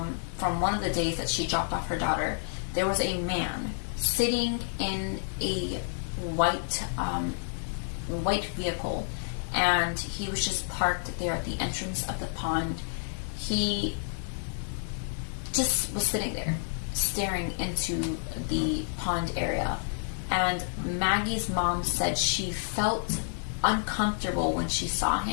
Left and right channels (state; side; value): silent; right; digital silence